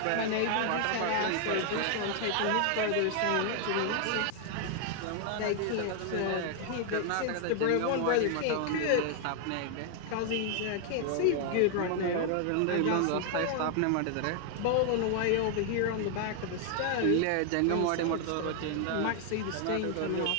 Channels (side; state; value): both; different; correlation 0.00